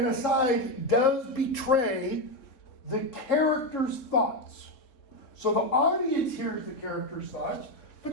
aside does betray the character's thoughts. So the audience hears the character's thoughts,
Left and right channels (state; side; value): late; right; 3.6 ms